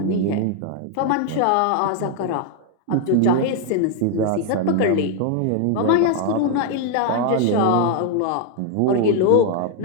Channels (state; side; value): different; both; correlation 0.00